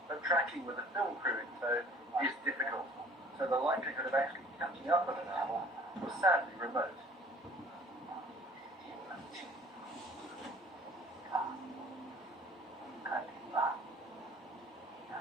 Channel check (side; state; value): both; normal; correlation 0.52